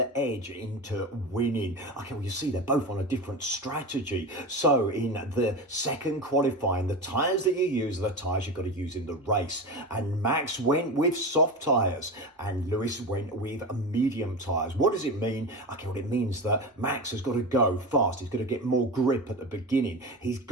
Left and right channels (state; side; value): normal; both; correlation 0.25